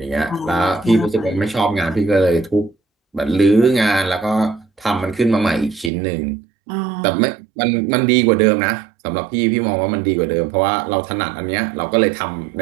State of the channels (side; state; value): left; drops out; at 5.9 s